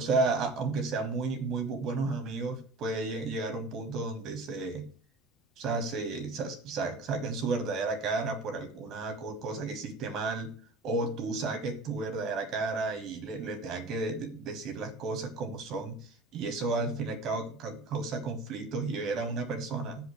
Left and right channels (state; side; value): quieter; left; 3.0 dB